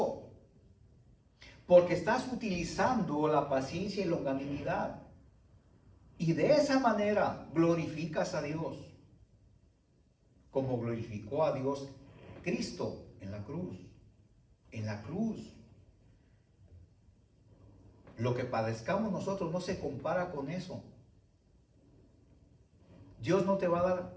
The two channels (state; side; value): identical; both; correlation 1.00